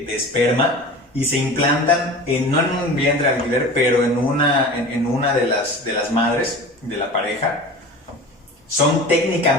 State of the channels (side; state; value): both; normal; correlation 0.36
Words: esperma, y se implantan no en un vientre de alquiler, pero en una de las madres de la pareja. Son